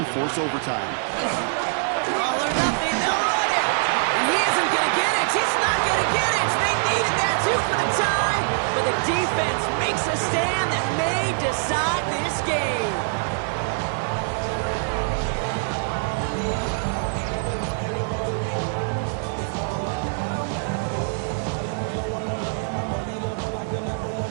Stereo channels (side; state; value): left; silent; digital silence